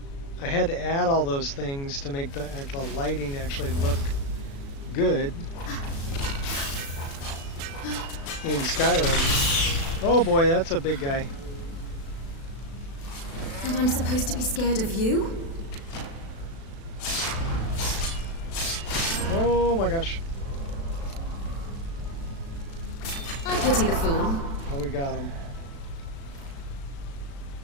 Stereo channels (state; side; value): late; right; 36 ms